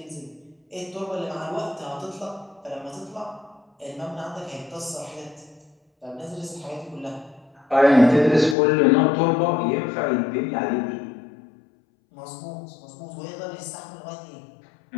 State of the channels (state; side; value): drops out; right; at 8.6 s